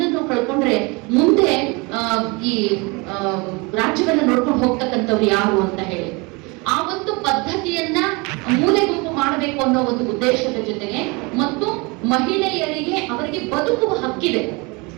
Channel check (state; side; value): quieter; left; 27.6 dB